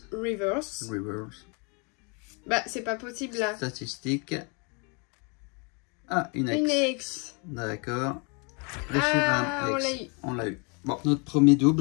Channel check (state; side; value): quieter; right; 33.2 dB